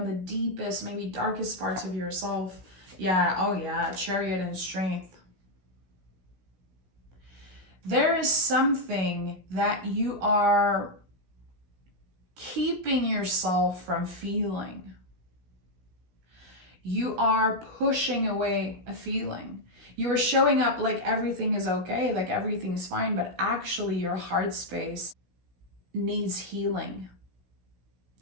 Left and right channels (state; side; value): late; left; 16 ms